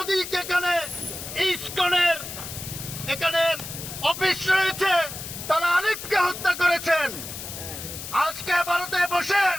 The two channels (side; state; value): left; noise; hiss, 9 dB below the sound